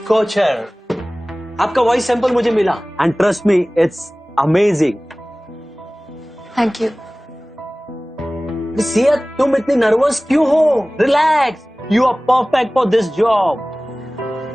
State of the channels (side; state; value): both; normal; correlation 0.98